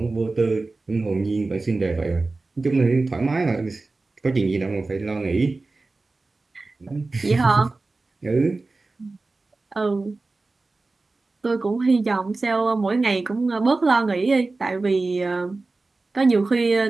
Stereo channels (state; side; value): quieter; left; 3.5 dB